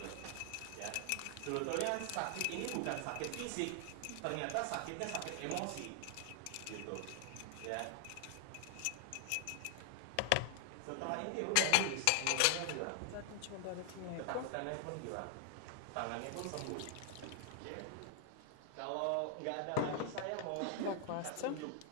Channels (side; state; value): both; different; correlation 0.00